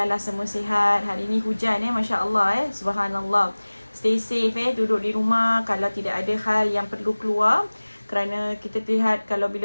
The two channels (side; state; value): both; inverted; correlation -1.00